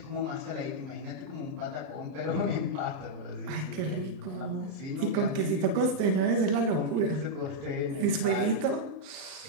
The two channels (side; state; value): left; late; 39 ms